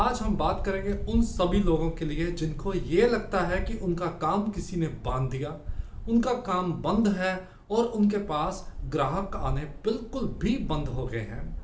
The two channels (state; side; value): identical; both; correlation 1.00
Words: हम बात करेंगे उन सभी लोगों के लिए जिनको ये लगता है कि उनका काम किसी ने बांध दिया, उनका काम बंद है और उनके पास ग्राहक आने बिल्कुल भी बंद हो गए